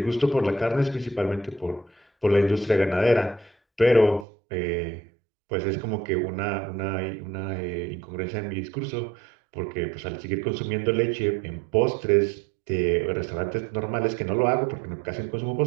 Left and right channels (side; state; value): left; drops out; at 4.2 s